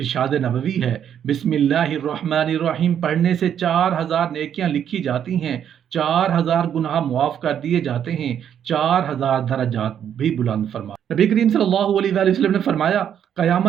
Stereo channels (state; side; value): quieter; left; 9.1 dB